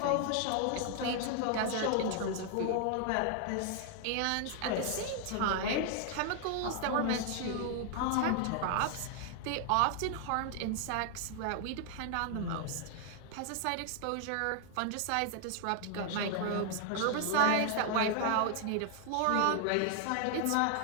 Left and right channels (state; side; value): different; both; correlation 0.00